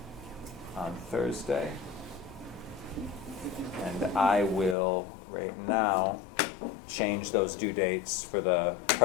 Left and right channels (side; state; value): right; drops out; at 4.8 s